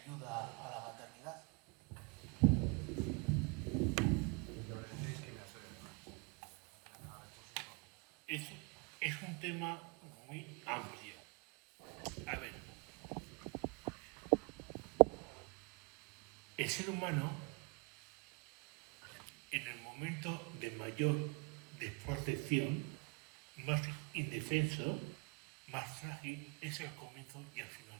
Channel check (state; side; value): quieter; left; 30.8 dB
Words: a la maternidad. Es un tema muy amplio. A ver, el ser humano, en el momento de mayor desprotección, más indefenso, más frágil, es el comienzo y el final